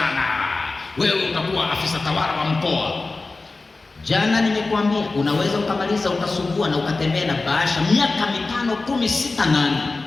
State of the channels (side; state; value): right; quieter; 3.6 dB